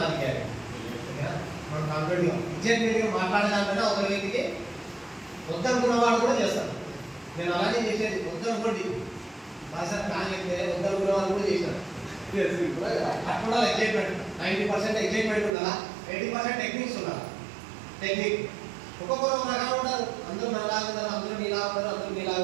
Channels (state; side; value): drops out; left; at 15.6 s